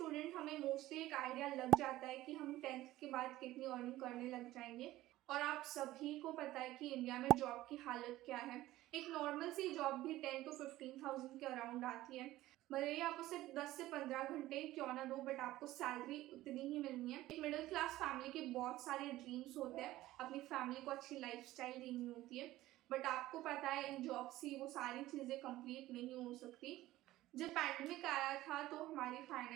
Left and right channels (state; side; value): quieter; left; 16.2 dB